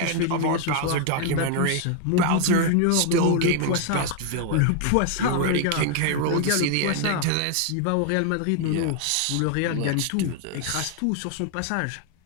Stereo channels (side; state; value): both; different; correlation 0.00